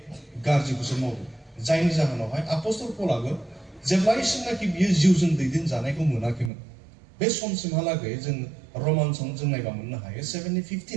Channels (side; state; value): left; drops out; at 6.5 s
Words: गाज्रिखौसो मावो। जायनि जाहोनावहाय आपोस्टल पौलाबो जेब्लासिमनाखि बियो जिउजों दैदेनजानायखौ मोनाखैमोन बे समसिमहालागै जों रमान्सआव जों नायबा मोननो हायो